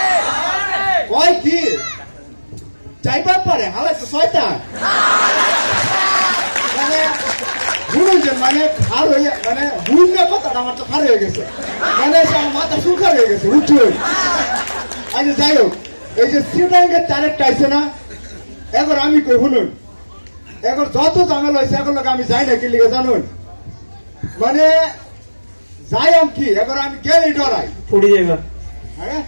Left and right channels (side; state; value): both; inverted; correlation -1.00